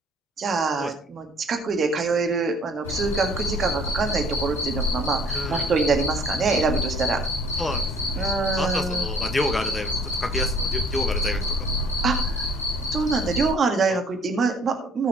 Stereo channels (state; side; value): normal; both; correlation 0.56